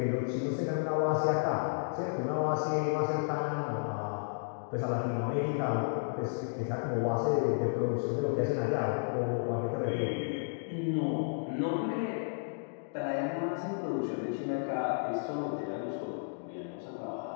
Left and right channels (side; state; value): right; silent; digital silence